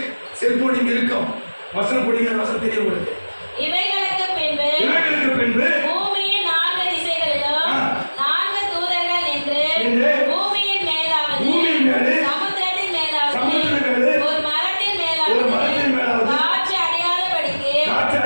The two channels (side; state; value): both; inverted; correlation -1.00